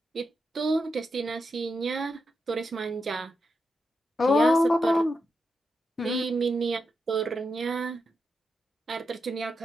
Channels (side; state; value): both; normal; correlation 0.86